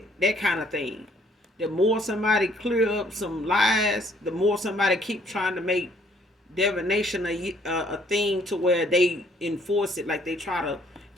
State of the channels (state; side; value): normal; both; correlation 0.63